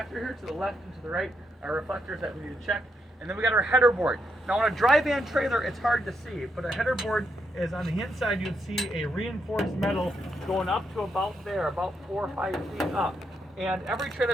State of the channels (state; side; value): normal; both; correlation 0.79